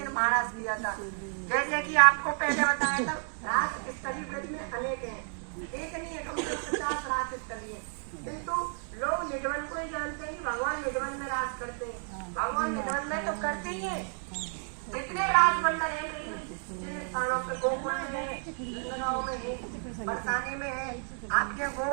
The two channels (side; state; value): left; silent; 55 dB below the other